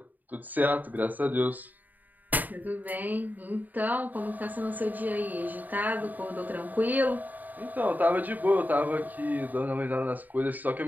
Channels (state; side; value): late; left; 0.084 ms